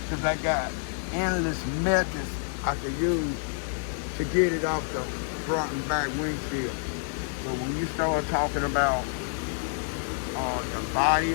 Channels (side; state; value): right; silent; 59 dB below the other